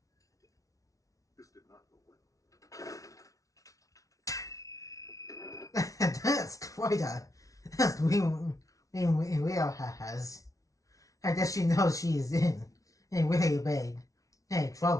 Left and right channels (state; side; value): late; right; 0.17 ms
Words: This did not go well. That's quite a that's Leo has. I guess she knows she's in really big